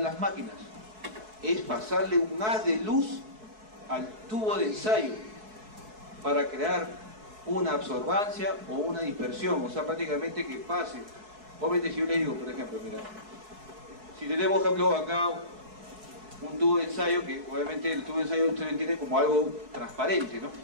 las máquinas. Es pasarle un haz de luz al tubo de ensayo para crear una absorbancia o una dispersión, o sea, prácticamente que pase. Obviamente si yo le digo, por ejemplo, mira, si tenemos, por ejemplo, acá un tubo de ensayo, que obviamente el tubo de ensayo usted lo entiende como algo transparente, ¿no?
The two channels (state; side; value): late; left; 4.6 ms